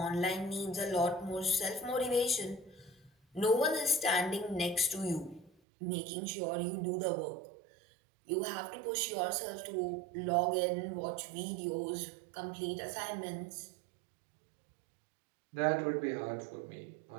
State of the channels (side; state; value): left; drops out; at 5.5 s